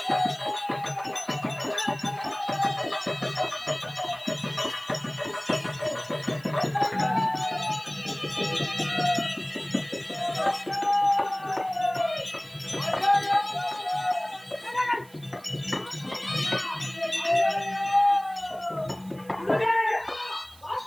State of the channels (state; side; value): noise; right; hiss, 24 dB below the sound